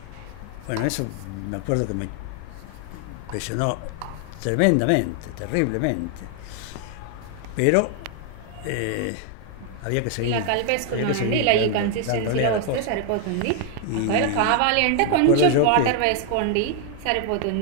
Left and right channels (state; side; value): different; both; correlation 0.00